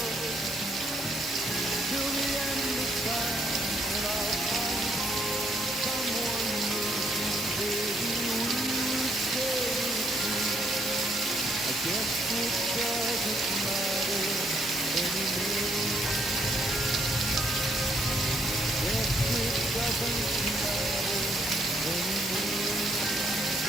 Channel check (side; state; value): both; normal; correlation 0.71